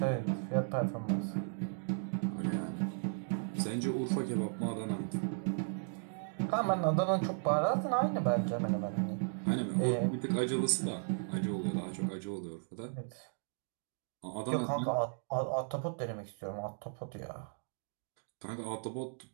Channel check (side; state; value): left; silent; digital silence